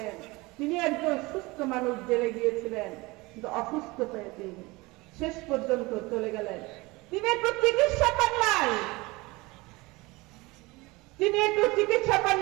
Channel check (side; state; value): left; quieter; 23.0 dB